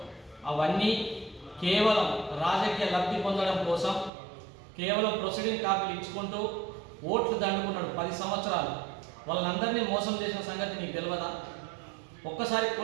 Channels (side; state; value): left; drops out; at 4.1 s